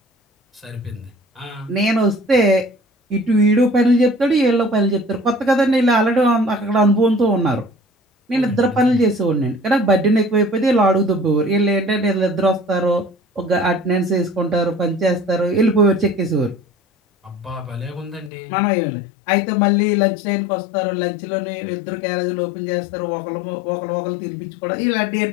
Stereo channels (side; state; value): right; drops out; at 18.3 s